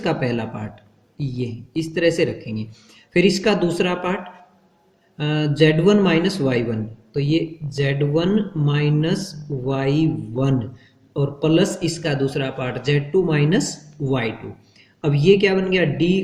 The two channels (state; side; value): identical; both; correlation 1.00